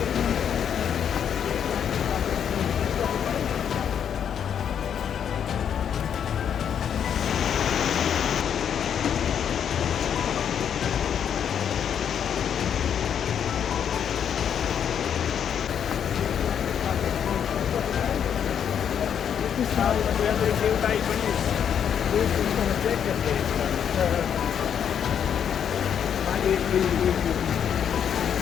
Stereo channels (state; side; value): quieter; right; 8.4 dB